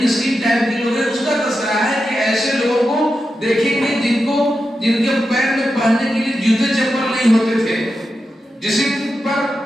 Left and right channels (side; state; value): both; normal; correlation 0.89